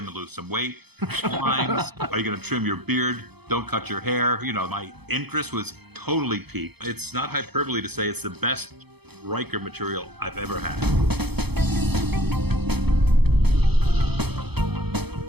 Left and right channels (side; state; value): left; late; 0.98 ms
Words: and lose some weight. Times. Are you going to trim your beard? Don't cut your hair. My interest was totally piqued. It's not hyperbole to say it's the best Riker material I've ever had.